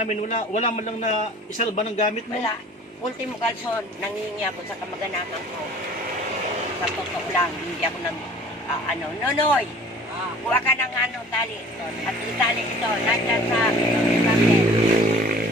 wala man lang na isalba ng gamit mo. Wala. Ultimo kalson, nangingi ako sa kamag-anakan ko. Sa totoo lang, hindi ako Nonoy, kuha ka ng tali. At itali ito, nandiyan sa kami.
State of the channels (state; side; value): normal; both; correlation 0.48